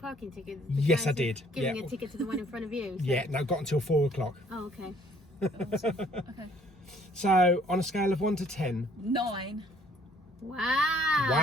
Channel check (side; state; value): both; normal; correlation 0.60